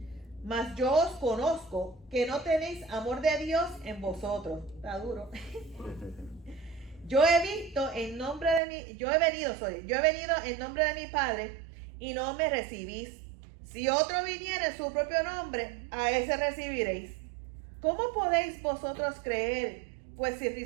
Mas yo os conozco que no tenéis amor de Dios en vosotros. Está duro. Yo he venido en nombre de mi Padre y no me recibís. Si otro viniera en su propio nombre, a ese recibiréis. ¿Cómo podéis vosotros creer? Pues si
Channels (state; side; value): drops out; left; at 8.6 s